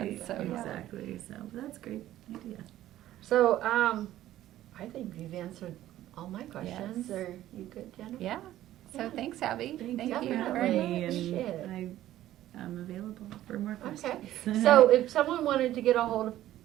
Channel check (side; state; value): left; quieter; 13.6 dB